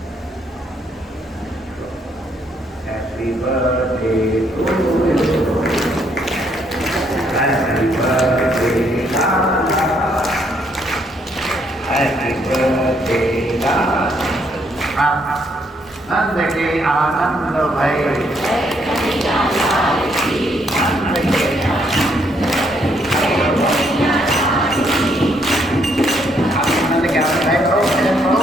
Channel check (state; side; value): normal; both; correlation 0.71